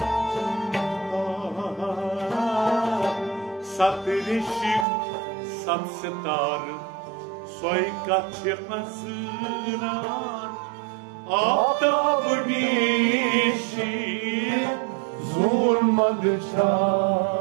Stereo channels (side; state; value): left; drops out; at 4.9 s